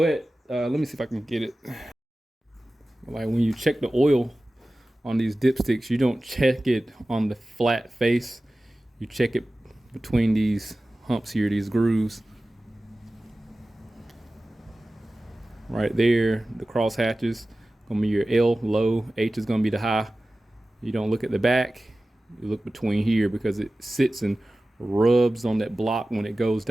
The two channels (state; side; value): normal; both; correlation 0.96